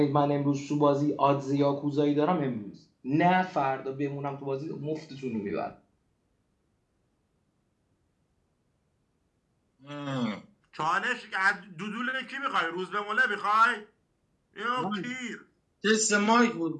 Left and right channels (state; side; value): identical; both; correlation 1.00